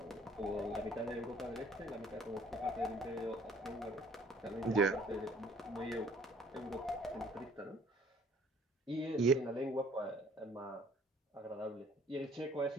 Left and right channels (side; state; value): both; normal; correlation 0.57